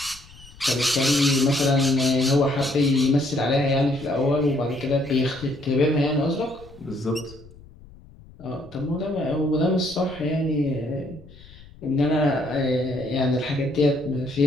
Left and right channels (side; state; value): left; noise; rumble, 22 dB below the sound